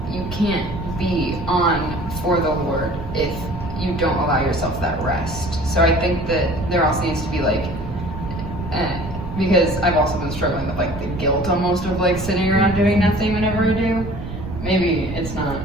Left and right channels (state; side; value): noise; right; rumble, 8 dB below the sound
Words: you can't be on for the Lord if you don't allow yourself that rest. So I think that there also needs to be like, because I've also been struggling with like the guilt almost of like sitting around doing nothing whenever I do. Maybe it's not